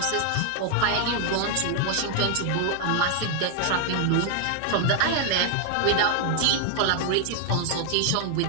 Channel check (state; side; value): different; both; correlation 0.00